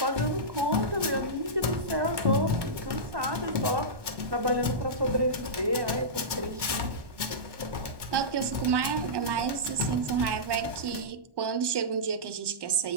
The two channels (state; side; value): late; left; 1.2 ms